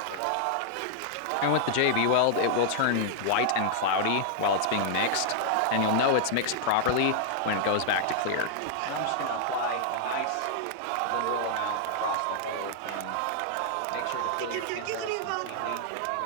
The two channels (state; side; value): different; both; correlation -0.01